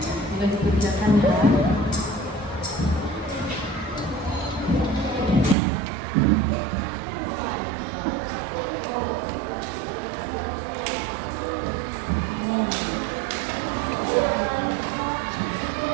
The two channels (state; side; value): drops out; left; at 5.6 s